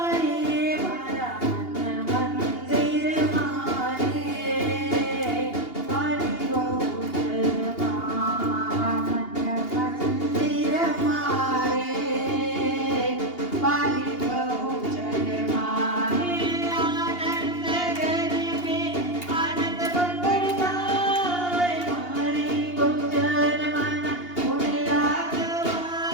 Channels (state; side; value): late; right; 2.8 ms